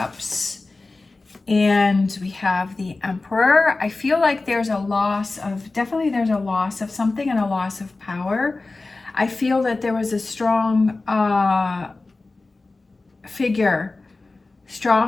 and we have the Emperor. I feel like there's a loss of, definitely there's a loss of something and a loss of power. I feel that there was a strong figure,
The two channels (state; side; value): quieter; right; 3.4 dB